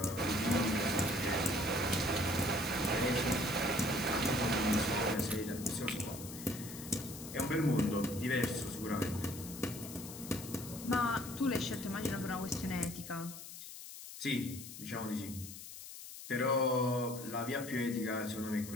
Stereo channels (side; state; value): left; noise; hiss, 12 dB below the sound